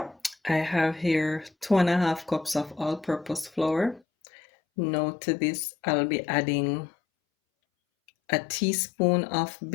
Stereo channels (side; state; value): right; drops out; at 4.0 s